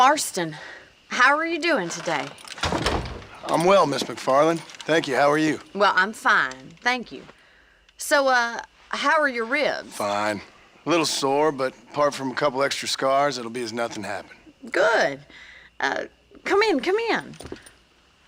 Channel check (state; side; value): identical; both; correlation 1.00